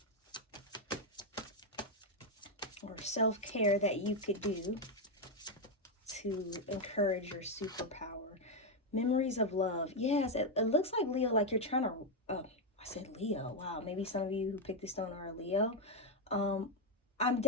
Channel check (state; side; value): normal; both; correlation 0.04